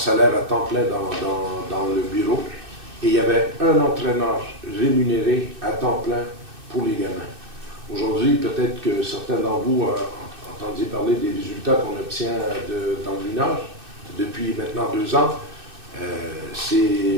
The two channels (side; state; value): left; late; 2.6 ms